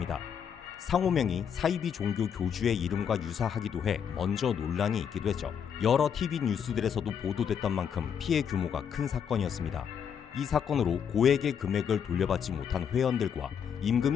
상호명이 사이비 종교 교주의 이름과 유사하기도 해 먼저 논란이 있기도 했죠. 여러 TV 뉴스들에서도 보도됐던 만큼 피해 규모가 큰 사건이었습니다. 이 사건으로 고액의 금액을 돌려받지 못한 회원들과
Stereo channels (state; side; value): quieter; right; 7.7 dB